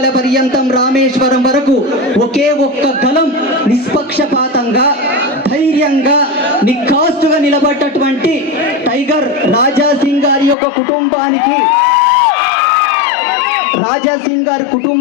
పర్యంతం రామేశ్వరం వరకు ఒకే ఒక్క గలం నిష్పక్షపాతంగా, ధైర్యంగా, నిఖాస్తుగా నిలబడ్డటువంటి టైగర్ రాజా సింగ్ గారి యొక్క కుటుంబానికి, రాజా సింగ్ గారి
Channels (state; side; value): drops out; right; at 10.6 s